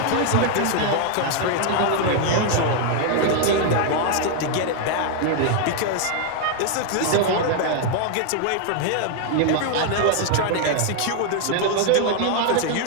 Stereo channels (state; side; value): different; both; correlation 0.00